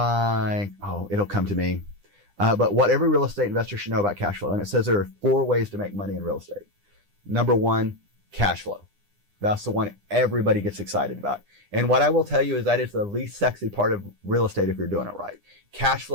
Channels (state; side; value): late; left; 9.9 ms